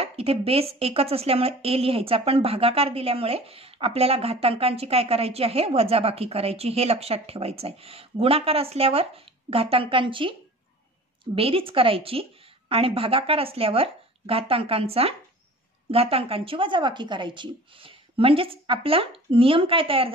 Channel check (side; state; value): both; normal; correlation 0.43